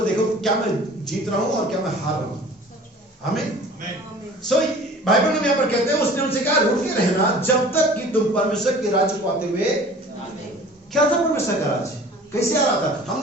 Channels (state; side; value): normal; both; correlation 0.45